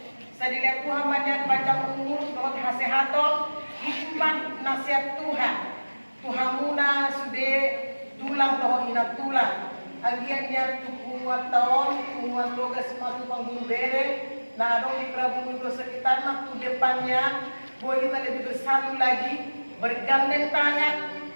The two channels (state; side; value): inverted; both; correlation -1.00